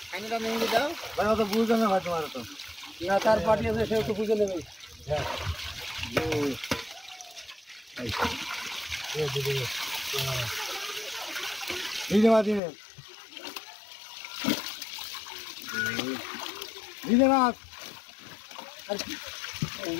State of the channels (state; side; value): drops out; right; at 12.6 s